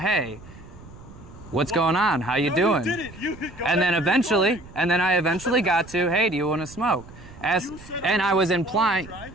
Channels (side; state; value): right; noise; rumble, 19 dB below the sound